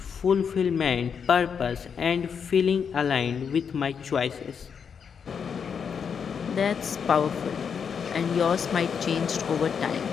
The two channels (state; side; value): quieter; right; 6.8 dB